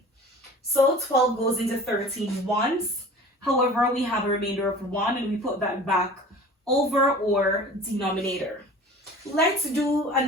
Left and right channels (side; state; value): both; normal; correlation 0.42